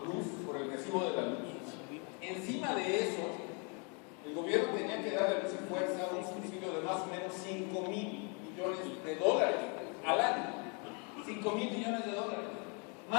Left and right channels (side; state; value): right; quieter; 34.9 dB